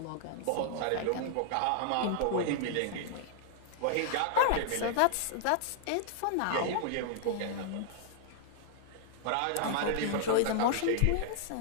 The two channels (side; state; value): both; different; correlation -0.01